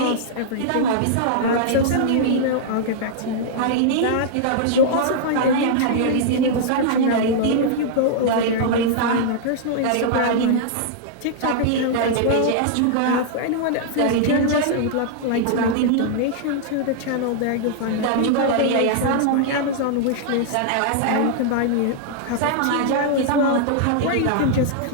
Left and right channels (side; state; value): both; different; correlation -0.01